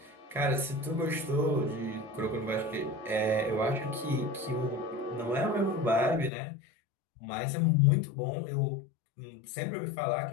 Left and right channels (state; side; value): drops out; right; at 6.3 s